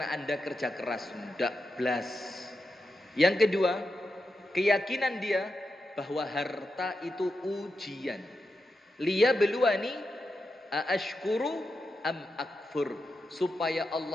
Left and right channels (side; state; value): both; normal; correlation 0.88